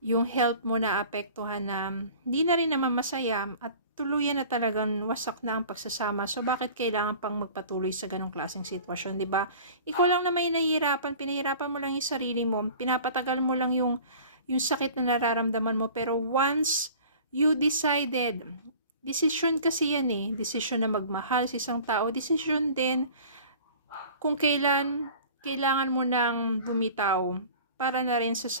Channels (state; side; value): inverted; both; correlation -0.44